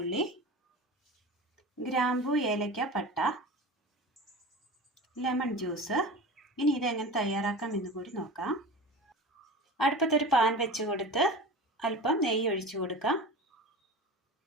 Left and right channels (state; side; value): normal; both; correlation 0.33